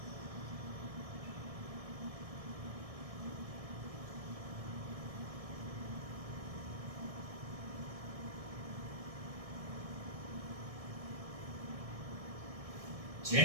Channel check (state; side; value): late; left; 1.6 ms